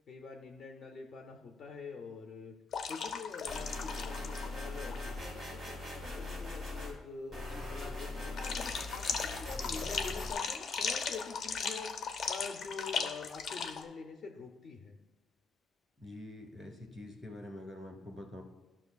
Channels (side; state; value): right; quieter; 4.2 dB